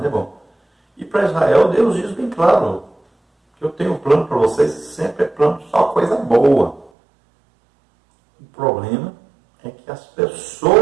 é bom. E para Israel, Deus diz bem claro que eu tenho um plano para vocês, sempre é plano, só coisa boa. O problema é que as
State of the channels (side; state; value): left; drops out; at 6.9 s